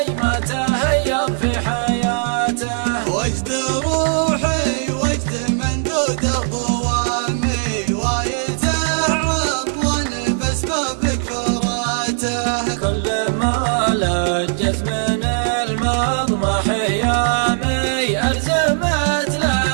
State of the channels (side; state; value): left; silent; 63 dB below the other